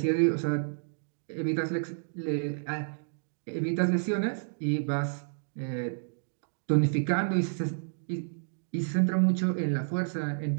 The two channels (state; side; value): silent; left; digital silence